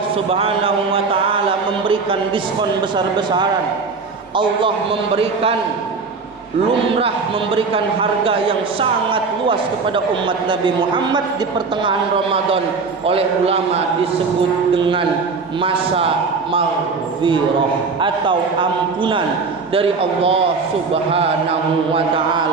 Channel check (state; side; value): quieter; left; 4.6 dB